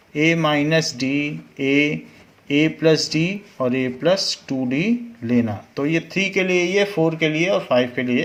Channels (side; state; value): both; identical; correlation 1.00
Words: A minus D, A plus D और A प्लस 2D लेना। तो ये 3 के लिए, ये 4 के लिए और 5 के लिए,